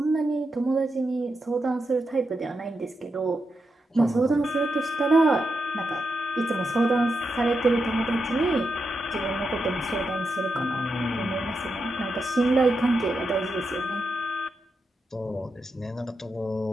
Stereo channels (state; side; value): normal; both; correlation 0.86